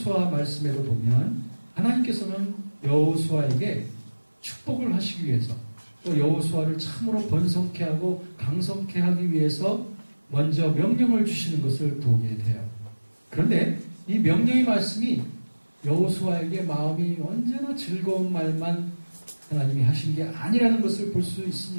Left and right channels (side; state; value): both; inverted; correlation -1.00